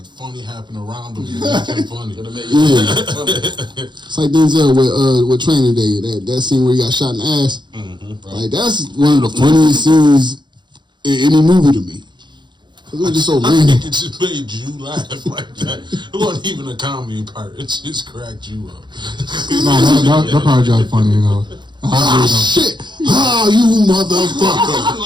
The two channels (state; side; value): late; left; 0.22 ms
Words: funny happened around him. Make him funny. It's like Denzel with Training Day. That scene where he got shot in the ass. Mm-hmm, right. Like that's one of the funniest scenes in any movie to me. It was just so I random. think it just made you laugh like that. It wasn't even a comedy part. It just cracked you up. No, that part was funny, you know. Shit! Ah, you motherfucker!